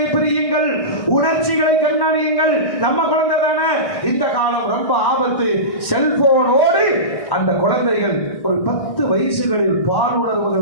பிரியுங்கள், உணர்ச்சிகளை கண்காணியுங்கள். நம்ம குழந்தை தானே. இந்த காலம் ரொம்ப ஆபத்து. கொடுத்து செல்போனோடு அந்த குழந்தைகள் ஒரு 10 வயசுகளில்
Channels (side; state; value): right; late; 1.6 ms